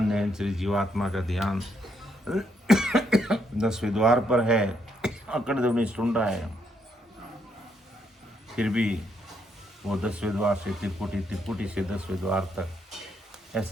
निहंचरी जीवात्मा का ध्यान 10वें द्वार पर है, अखंड ध्वनि सुन रहा है, फिर भी वो 10वें द्वार से त्रिकुटी, त्रिकुटी से 10वें द्वार तक,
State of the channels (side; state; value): both; normal; correlation 0.75